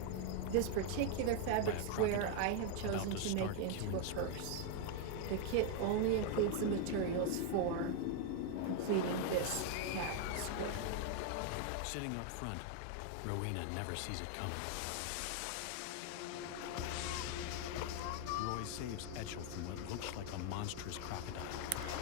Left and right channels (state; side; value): different; both; correlation 0.01